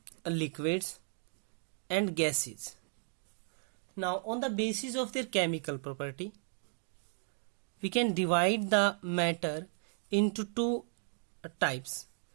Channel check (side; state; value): left; silent; 54 dB below the other